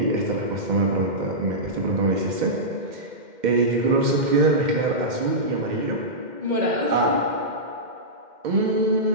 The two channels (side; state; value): left; late; 2.1 ms